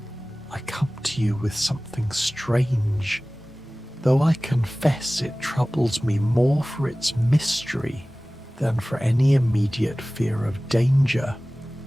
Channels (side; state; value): both; normal; correlation 0.98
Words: "I come to you with something strange, though I confess it troubles me more for its mystery than for any immediate fear of danger.